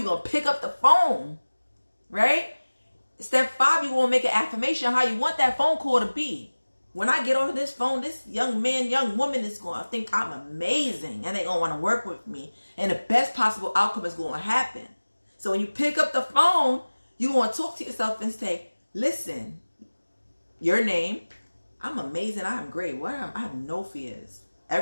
going to pick up the phone, right? Step 5, you're going to make an affirmation how you want that phone call to be. When I get on this phone, this young man, young woman is going to think I'm amazing, and they're going to want to work with me. And the best possible outcome is going to happen. So when you pick up the phone, you want to talk to yourself and say, listen, your name, I'm amazing, I'm great. I have no fears.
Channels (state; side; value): inverted; both; correlation -1.00